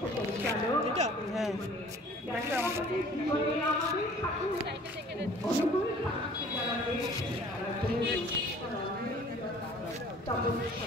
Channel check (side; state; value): both; normal; correlation 0.51